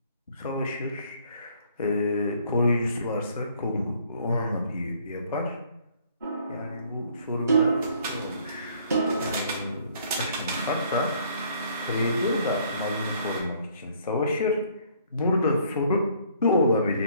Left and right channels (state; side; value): inverted; both; correlation -0.61